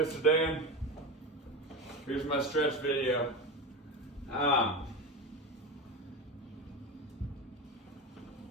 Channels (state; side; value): normal; both; correlation 0.22